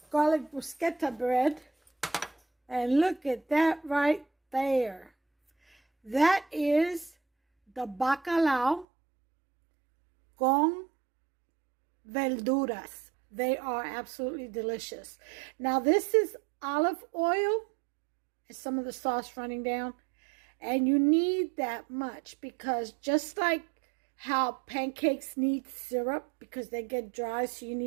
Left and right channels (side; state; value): left; drops out; at 8.8 s